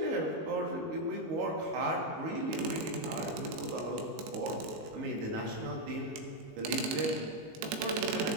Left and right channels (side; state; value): left; late; 19 ms